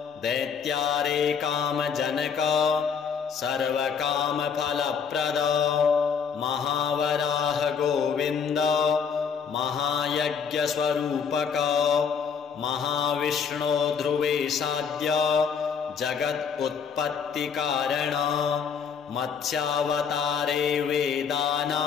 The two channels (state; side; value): quieter; right; 6.6 dB